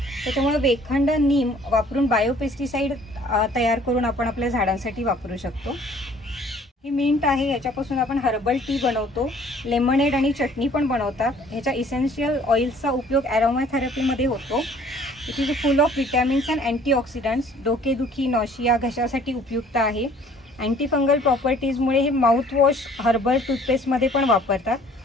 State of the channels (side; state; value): both; normal; correlation 0.56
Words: त्याच्यामुळे वेखंड, नीम वापरून बायोपेस्टिसाइड तयार करून आपण आपल्या झाडांसाठी वापरू शकतो. ही मिंट आहे. ह्याच्यापासून आपण हर्बल टी बनवतो. लेमनेड आणि चटणी पण बनवतात. ह्याच्या इसेन्शियल ऑइल्सचा उपयोग ॲरोमॅथेरपीमध्ये होतो. It is full of vitamins and antioxidants. डोकेदुखी, नॉशिया, घशासाठी उपयुक्त आहे. अँटी फंगल प्रॉपर्टीजमुळे हे माउथवॉश हर्बल टूथपेस्टमध्ये पण वापरतात.